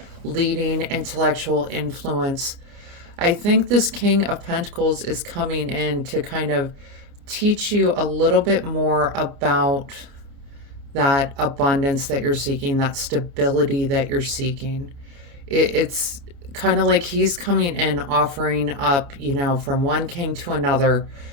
leading intellectual influence. I think this King of Pentacles is coming in to kind of teach you a little bit more about that abundance that you're seeking, that stability that you're seeking. It's kind of like he's coming in offering up, from one king to another,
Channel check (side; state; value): left; late; 29 ms